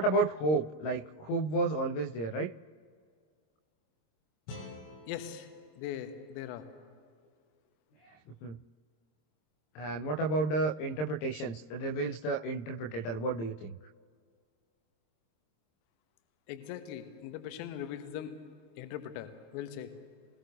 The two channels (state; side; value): late; right; 26 ms